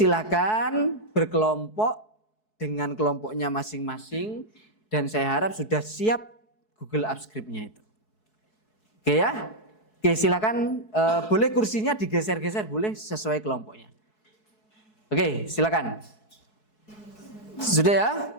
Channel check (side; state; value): right; late; 4.7 ms